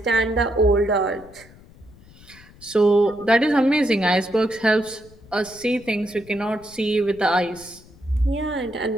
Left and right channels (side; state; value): left; noise; rumble, 24 dB below the sound